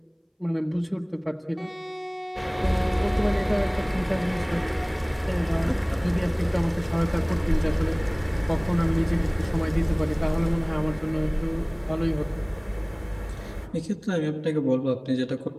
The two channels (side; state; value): both; identical; correlation 1.00